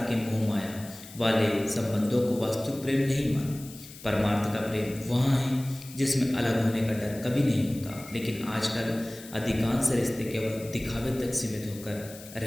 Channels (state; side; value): noise; left; hiss, 17 dB below the sound